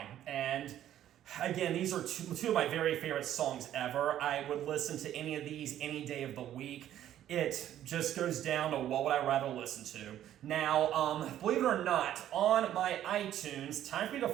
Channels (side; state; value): left; quieter; 11.7 dB